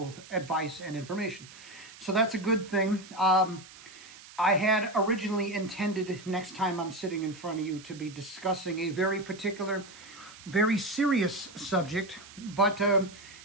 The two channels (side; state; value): right; noise; hiss, 19 dB below the sound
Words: advice and information. So that's a good thing. I had originally intended, next time I'm sitting in front of you, to be discussing a very particular, very serious subject, but